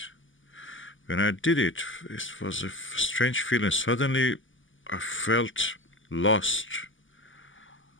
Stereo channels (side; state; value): right; late; 0.57 ms